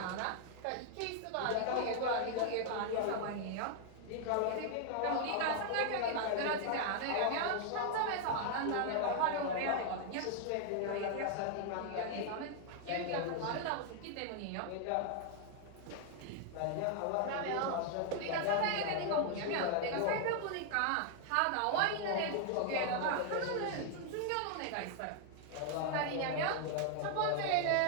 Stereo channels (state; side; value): different; both; correlation 0.00